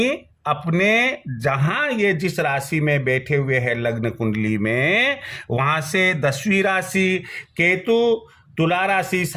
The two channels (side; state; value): both; identical; correlation 1.00